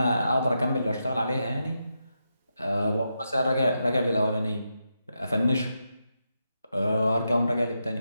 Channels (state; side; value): inverted; both; correlation -0.85